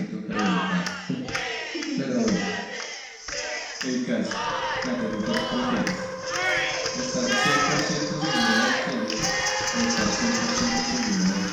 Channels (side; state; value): both; identical; correlation 1.00